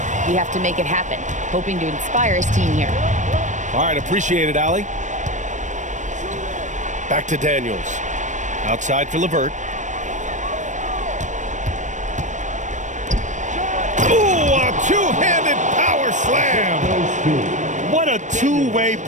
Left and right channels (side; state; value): left; late; 0.35 ms